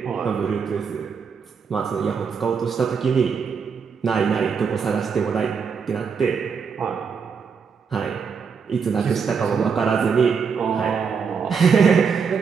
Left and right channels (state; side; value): quieter; left; 6.0 dB